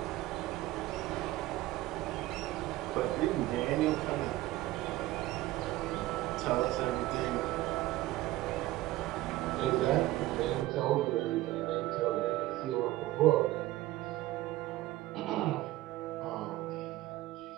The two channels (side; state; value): left; quieter; 16.7 dB